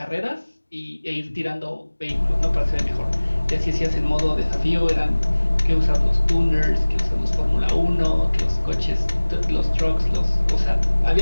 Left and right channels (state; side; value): inverted; both; correlation -1.00